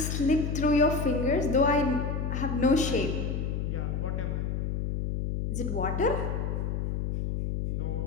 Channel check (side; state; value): left; noise; hum, 1 dB below the sound